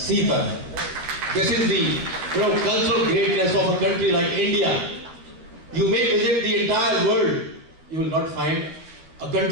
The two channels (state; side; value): late; left; 12 ms